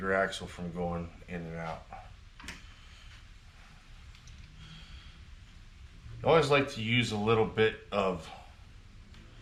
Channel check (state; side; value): identical; both; correlation 1.00